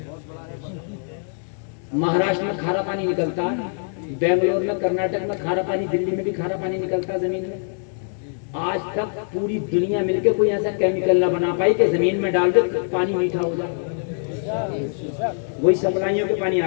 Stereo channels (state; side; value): silent; right; digital silence